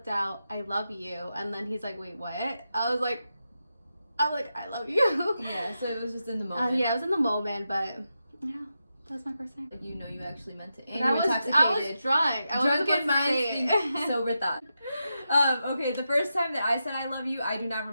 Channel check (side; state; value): both; inverted; correlation -0.88